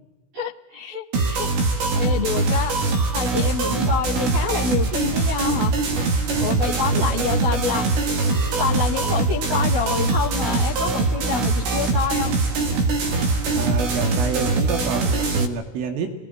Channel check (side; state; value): left; late; 16 ms